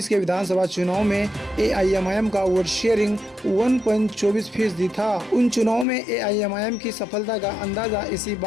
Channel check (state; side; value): drops out; right; at 5.9 s